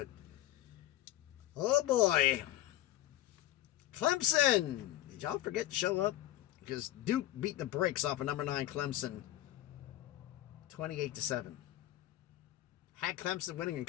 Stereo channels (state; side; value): quieter; right; 14.3 dB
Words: oh boy, Clemson! Did y'all forget to show up? Because Duke beat the brakes off of number 9 Clemson 28-7. Had Clemson winning and